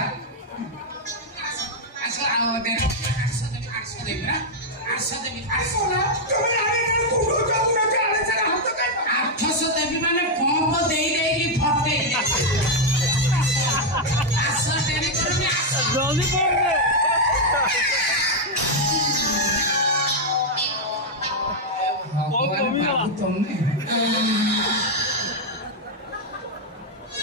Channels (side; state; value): both; normal; correlation 0.00